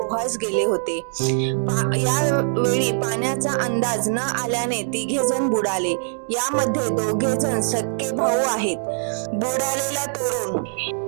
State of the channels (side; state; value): left; silent; digital silence